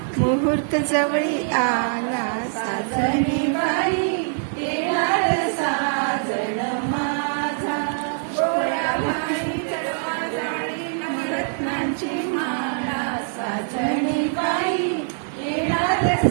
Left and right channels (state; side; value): silent; left; 63 dB below the other